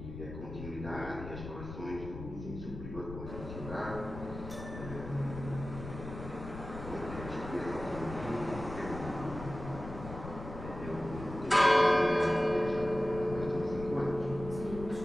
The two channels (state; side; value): noise; left; rumble, 10 dB below the sound